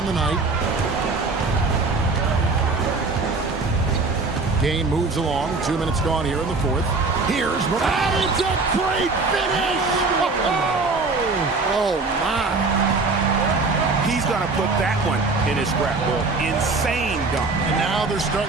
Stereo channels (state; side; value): quieter; left; 3.9 dB